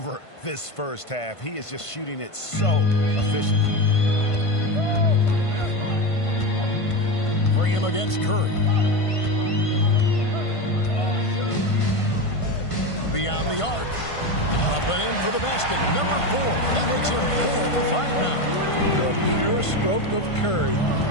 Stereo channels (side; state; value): right; late; 1.5 ms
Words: this first half. He is just shooting it so efficiently. Graham against Curry. Beyond the arc. Up and in for the basket. Number 4. That makes him 4 for 5 now. The pure stroke of Curry.